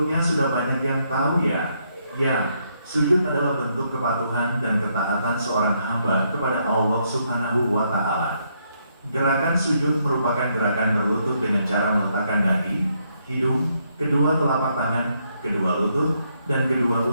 sudah banyak yang tahu ya. Ya, sujud adalah bentuk kepatuhan dan ketaatan seorang hamba kepada Allah Subhanahu wa Ta'ala. Gerakan sujud merupakan gerakan berlutut dengan cara meletakkan dahi, hidung, kedua telapak tangan, kedua lutut, dan kedua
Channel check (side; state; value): both; inverted; correlation -0.75